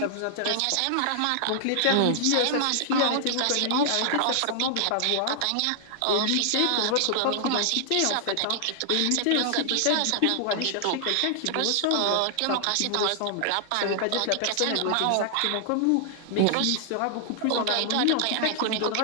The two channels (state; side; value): different; both; correlation -0.01